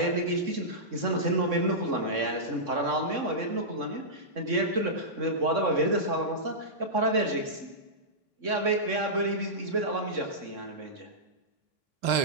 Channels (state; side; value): late; left; 3.6 ms